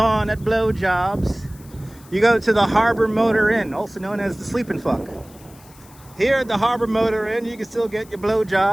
at blowjobs, you go to the Harbor Motor Inn, also known as the Sleep and Fuck. Here at the Harbor Motor Inn, you can still get your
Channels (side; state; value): left; noise; hiss, 25 dB below the sound